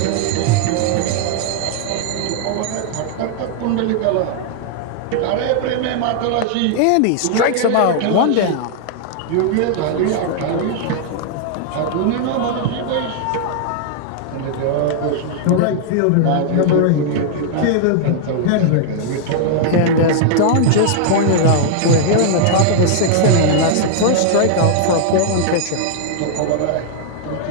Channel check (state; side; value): different; both; correlation -0.01